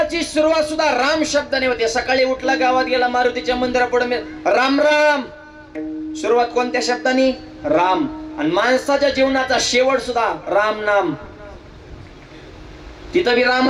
सुरुवात सुद्धा राम शब्दाने होते सकाळी उठला गावात गेला मारुतीच्या मंदिरापुढे राम राम सुरुवात कोणत्या शब्दाने राम आणि माणसाच्या जीवनाचा शेवट सुद्धा राम नाम तिथं बी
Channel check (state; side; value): identical; both; correlation 1.00